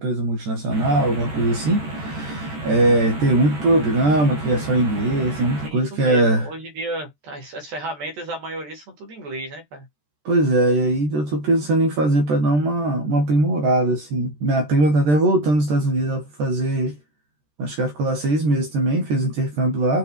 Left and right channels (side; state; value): left; late; 13 ms